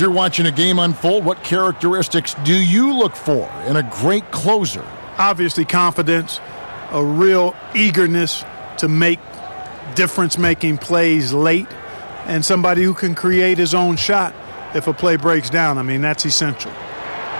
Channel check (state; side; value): inverted; both; correlation -1.00